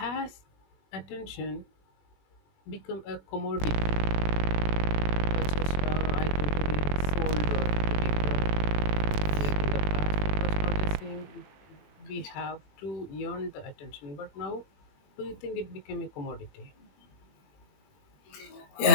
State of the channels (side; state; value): right; late; 20 ms